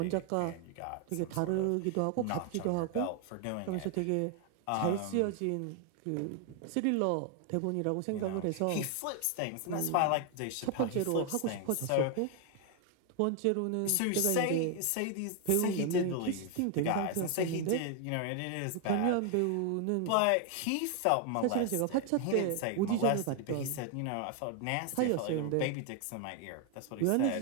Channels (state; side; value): different; both; correlation 0.00